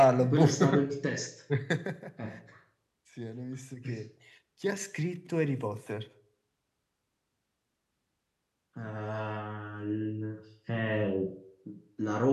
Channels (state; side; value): identical; both; correlation 1.00